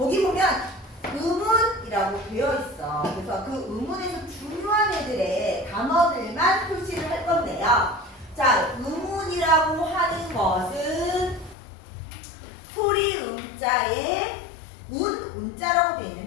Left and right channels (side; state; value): right; drops out; at 11.6 s